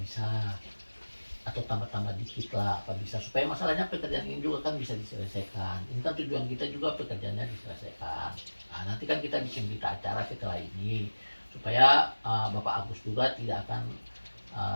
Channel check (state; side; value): inverted; both; correlation -1.00